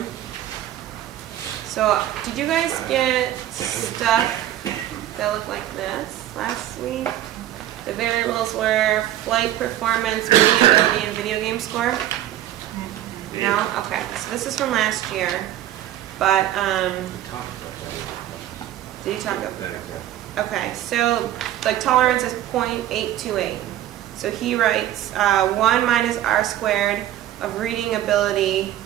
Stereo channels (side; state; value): left; quieter; 12.8 dB